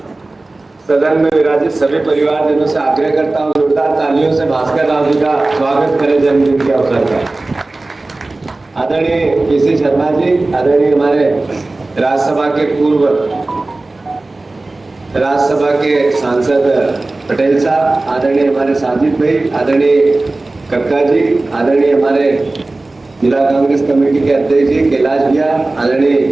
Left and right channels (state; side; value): quieter; left; 3.1 dB